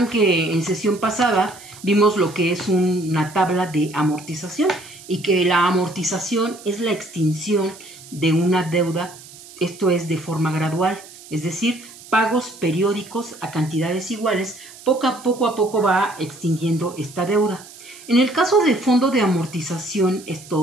que en sesión pasada vimos lo que es una tabla de amortización y que la amortización es la extinción de una deuda, esto es de forma gradual, es decir, pagos periódicos a cantidades iguales, poco a poco va extinguiendo esta deuda. En el caso de fondo de amortización es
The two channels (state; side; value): noise; right; hiss, 19 dB below the sound